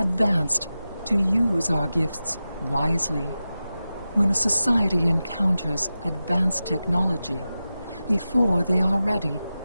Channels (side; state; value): both; inverted; correlation -0.93